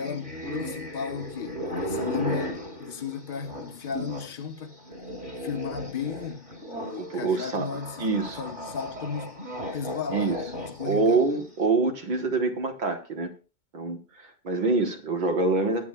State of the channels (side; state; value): left; late; 2.2 ms